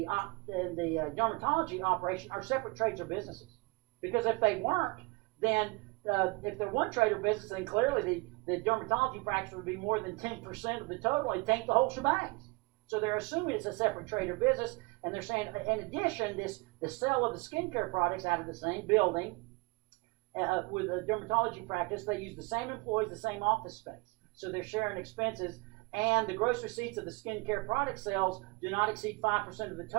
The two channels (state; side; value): quieter; left; 26.9 dB